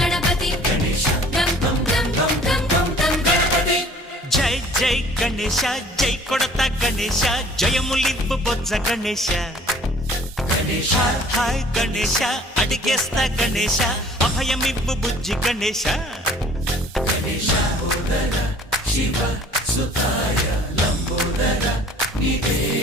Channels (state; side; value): normal; both; correlation 0.52